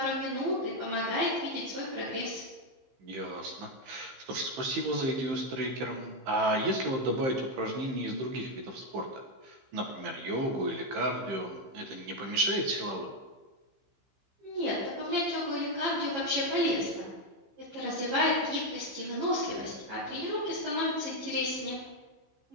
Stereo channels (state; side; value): late; left; 15 ms